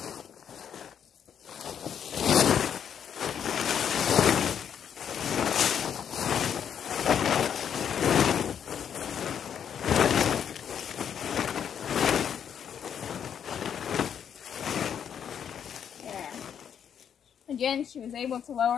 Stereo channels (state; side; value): quieter; right; 8.4 dB